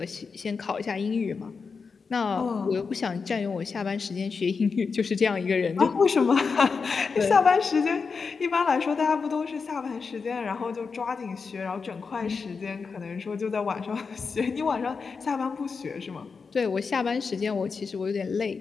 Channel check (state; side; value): quieter; right; 5.1 dB